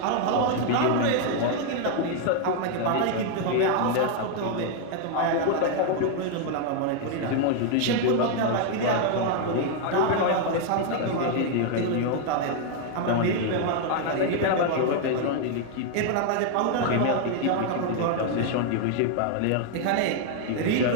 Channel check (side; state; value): both; different; correlation 0.00